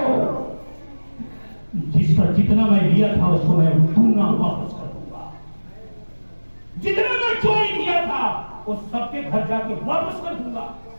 जिस पर जितना मैं लिया था उसको मैं दूंगा, वापस कर दूंगा। जितना मैं चोरी किया था वो सबके घर जाके वापस कर दूंगा।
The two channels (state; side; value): inverted; both; correlation -1.00